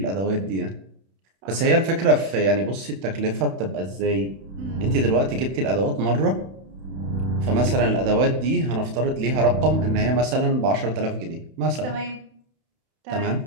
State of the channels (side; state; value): left; late; 31 ms